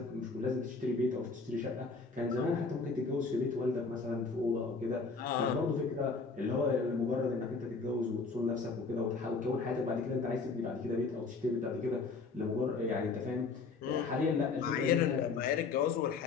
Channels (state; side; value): quieter; right; 4.5 dB